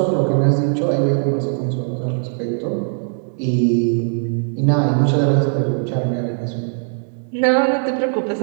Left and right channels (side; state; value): left; silent; digital silence